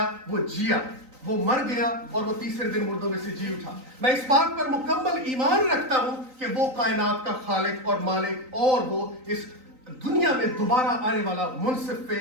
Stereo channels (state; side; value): late; left; 3.9 ms